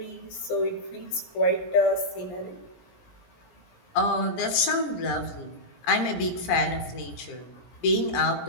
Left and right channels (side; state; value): right; late; 17 ms